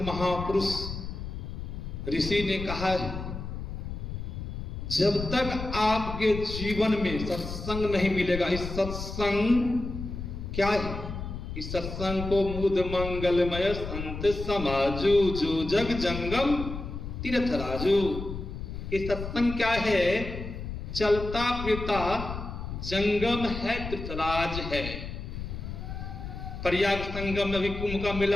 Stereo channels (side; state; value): left; noise; rumble, 7 dB below the sound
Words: महापुरुष ऋषि ने कहा है, जब तक आपके जीवन में सत्संग नहीं मिलेगा, इस सत्संग क्या है? इस सत्संग को मुद मंगलमय संत समाजू, जो जग जंगम तीर्थ राजू। ये सत्संग क्या है? चलता फिरता जंगम है, तीर्थराज है। प्रयाग संगम में अभी कुंभ का